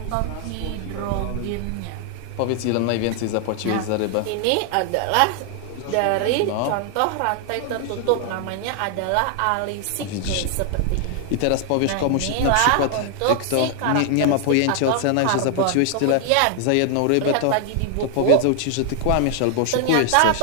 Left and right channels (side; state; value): both; different; correlation 0.00